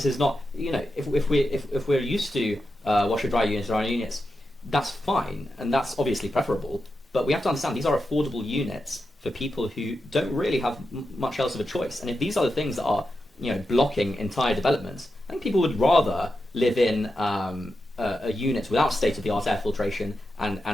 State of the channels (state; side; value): normal; both; correlation 0.89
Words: is not if we're used to washer dryer units or our units, that's fine, and that's obviously preferable. But we have to understand these are affordable units for people who don't really have much else of a choice. And if these are the things that are blocking entire developments, I think people would rather live in a unit without state-of-the-art air filtration